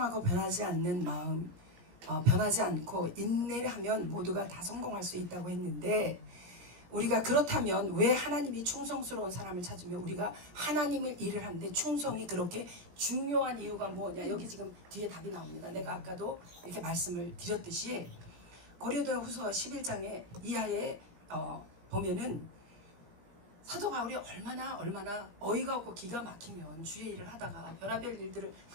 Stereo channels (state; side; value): late; left; 17 ms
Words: 변하지 않는 마음, 변하지 않고 인내를 하면 모두가 다 성공할 수 있다고 했는데, 우리가 그렇다면 왜 하나님이 충성스러운 사람을 찾으며 우리가 하나님의 일을 하는데 충성이 그렇게 중요한 이유가 뭐냐? 여기 지금 뒤에 답이 나옵니다. 내가 아까도 이렇게 말씀을 드렸듯이 고린도후서 11장에 이하에 보면은 사도 바울이 얼마나 어이가 없고 기가 막히면 주의 일을 하다가 별의별 일들을